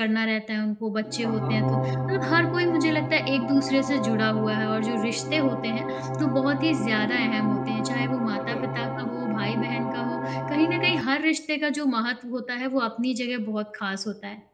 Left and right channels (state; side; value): identical; both; correlation 1.00